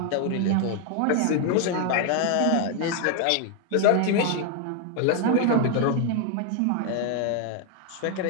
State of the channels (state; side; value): different; both; correlation 0.01